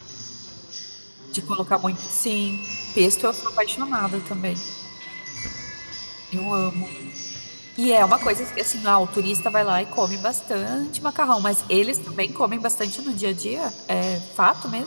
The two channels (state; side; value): inverted; both; correlation -1.00